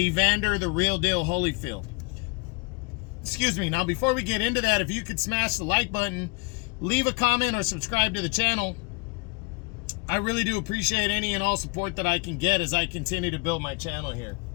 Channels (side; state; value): right; quieter; 30.6 dB